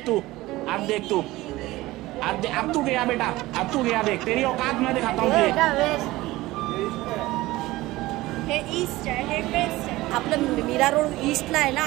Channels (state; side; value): quieter; left; 18.5 dB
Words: तू अब तू गया बेटा, अब तू गया, देख तेरी औकात मैं दिखाता हूँ। हे ईस्ट आहे, हे वेस्ट आहे। आपलं मीरा रोड ईस्टला आहे ना।